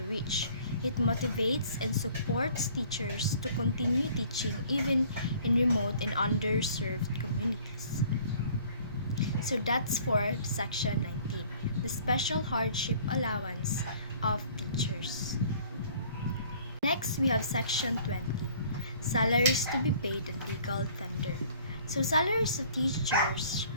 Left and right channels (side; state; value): both; inverted; correlation -0.54